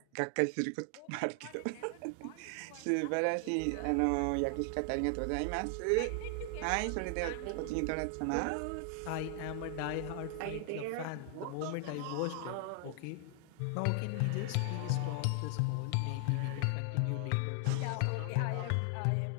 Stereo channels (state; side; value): different; both; correlation 0.00